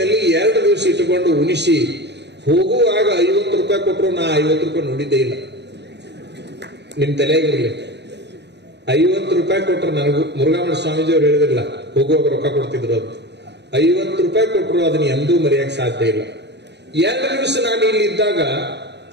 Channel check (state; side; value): late; left; 0.50 ms